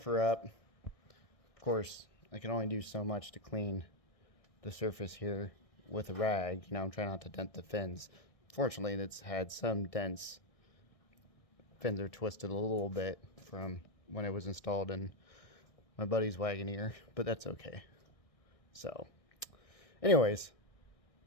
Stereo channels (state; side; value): late; right; 1.6 ms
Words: her up. Of course, I can only do so much to clean the surface here with a rag. I'm trying not to dent the fins. Fortunately, it's had some dents. Fins are twisted a little bit from when it was installed in my buddy's Wagoneer, but that's okay. So, anyways,